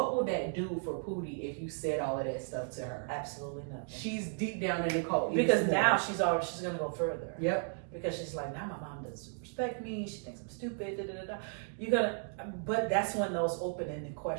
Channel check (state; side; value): silent; left; 55 dB below the other